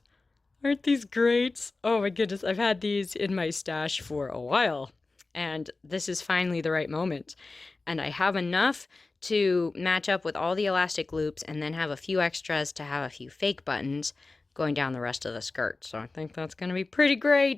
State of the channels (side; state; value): right; quieter; 3.6 dB